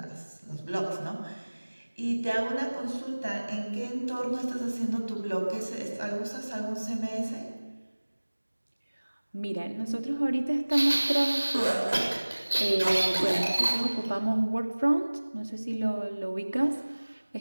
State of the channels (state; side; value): inverted; both; correlation -1.00